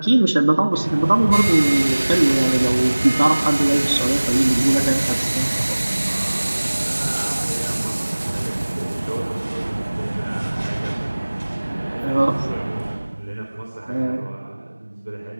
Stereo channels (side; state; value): both; inverted; correlation -1.00